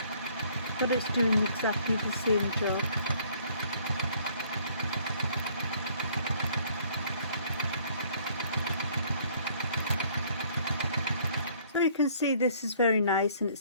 but it's doing exactly the same job. So you can see this is very nice and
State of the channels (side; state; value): both; inverted; correlation -0.60